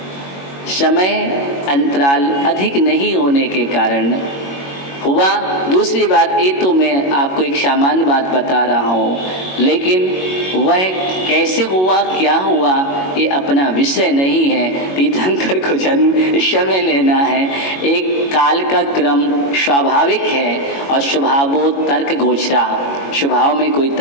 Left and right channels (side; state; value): right; late; 22 ms